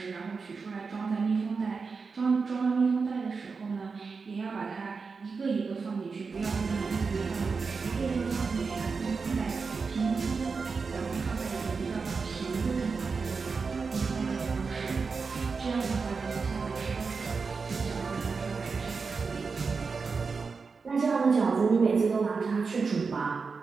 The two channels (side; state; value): left; quieter; 4.8 dB